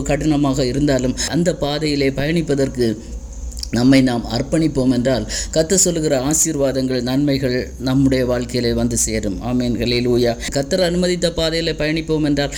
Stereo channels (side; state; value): both; identical; correlation 1.00